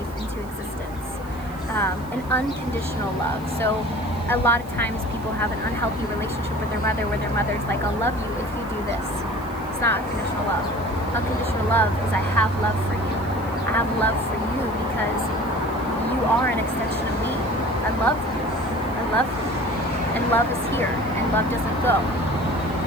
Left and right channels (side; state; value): right; noise; hiss, 24 dB below the sound